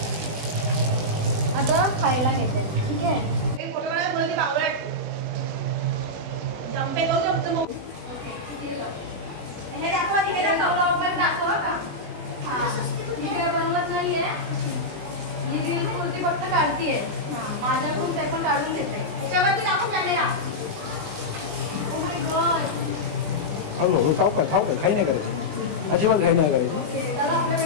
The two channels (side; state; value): left; late; 20 ms